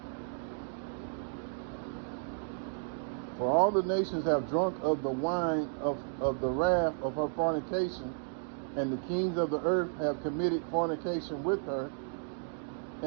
For all the nations have drunk of the wine of the wrath of her fornication, and the kings of the earth have committed fornication with her,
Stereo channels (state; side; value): silent; left; digital silence